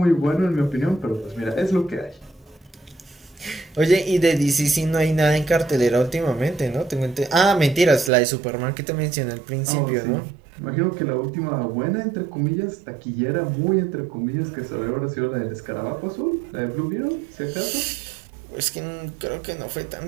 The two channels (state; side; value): drops out; left; at 8.1 s